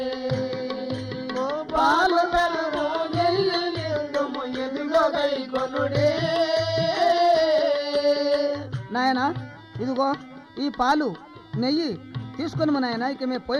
పాలు పెరుగు నెయ్యి ఇత్తుము ఇదుగా గై కొనుడి నాయనా ఇదిగో ఈ పాలు నెయ్యి తీసుకొని మా నాయన ఇక మేము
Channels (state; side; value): identical; both; correlation 1.00